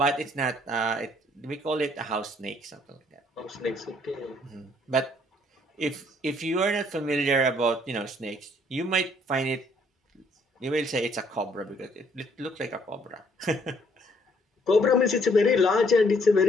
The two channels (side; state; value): both; normal; correlation 0.65